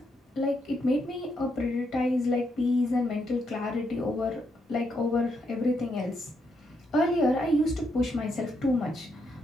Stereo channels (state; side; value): normal; both; correlation 0.78